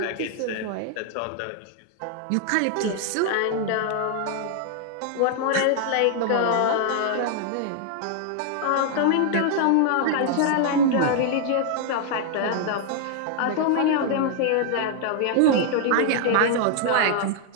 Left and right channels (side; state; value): both; different; correlation 0.00